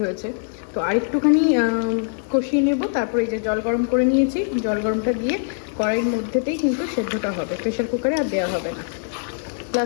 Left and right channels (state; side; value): silent; right; 61 dB below the other